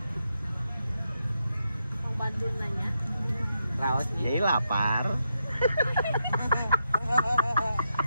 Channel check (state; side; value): inverted; both; correlation -0.84